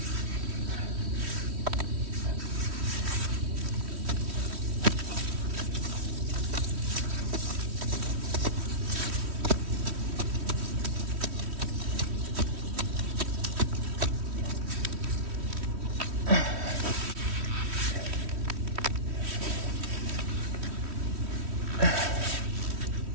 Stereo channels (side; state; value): left; late; 3.1 ms